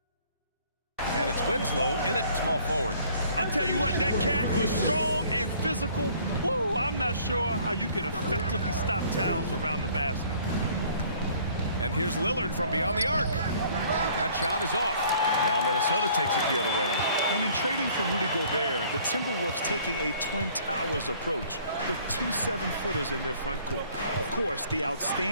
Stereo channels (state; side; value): inverted; both; correlation -0.56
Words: And it's Winslow in at small forward. I'll tell you what, that cat was strong and physical. Woo, I'm not sure how you can effectively stop Towns around the basket. And here's Lillard from beyond the arc. That shot is off. Now Minnesota takes it the other way. And in trading for Rudy Gobert, the Timberwolves taking a Twin Towers approach with 2 7-footers in their front court. Of course, the